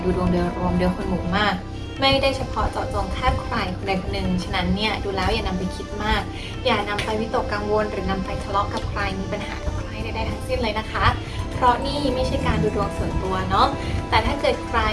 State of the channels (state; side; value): identical; both; correlation 1.00